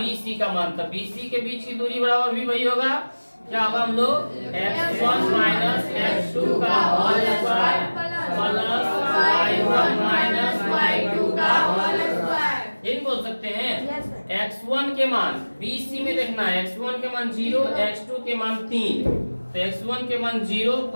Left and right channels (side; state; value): both; inverted; correlation -1.00